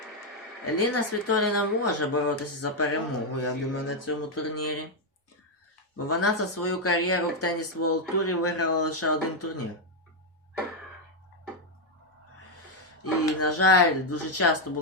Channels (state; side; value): normal; both; correlation 0.02